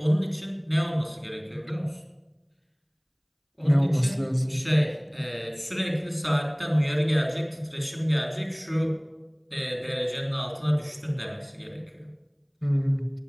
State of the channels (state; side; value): identical; both; correlation 1.00